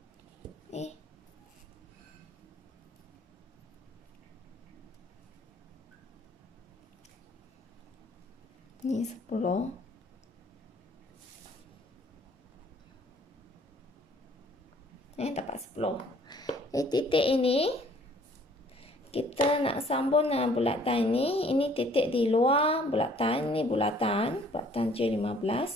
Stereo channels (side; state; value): both; normal; correlation 0.58